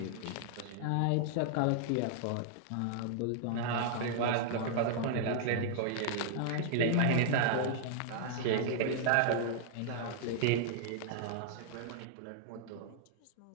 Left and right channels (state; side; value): different; both; correlation -0.01